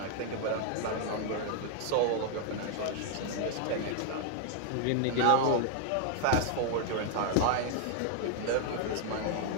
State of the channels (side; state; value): both; different; correlation 0.00